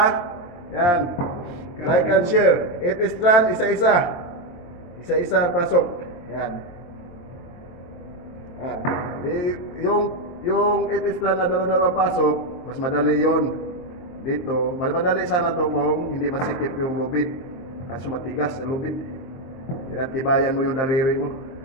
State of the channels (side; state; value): right; late; 23 ms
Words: Yan. Like and share. 8 strand, isa-isa. Isa-isa ang pasok. Yan. Yan. Yung 8 strand na dalawa pasok, mas madali yon dito. Mas madali sana to kung hindi masikip yung lubid. Kaso matigas ang lubid. Kaya tibayan mo yung daliri mo.